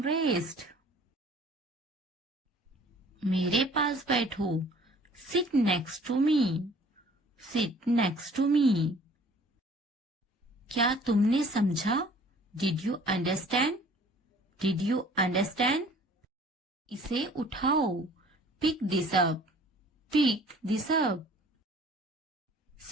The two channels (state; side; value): normal; both; correlation 0.52